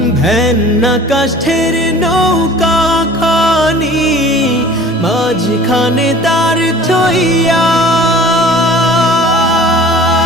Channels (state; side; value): normal; both; correlation 0.45